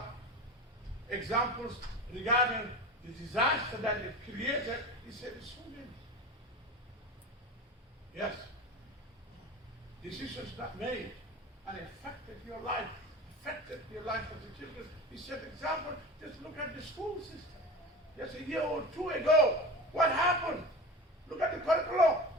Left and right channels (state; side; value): normal; both; correlation 0.31